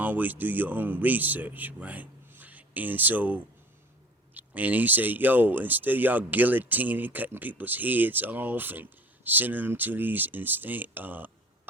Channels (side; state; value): both; normal; correlation 0.45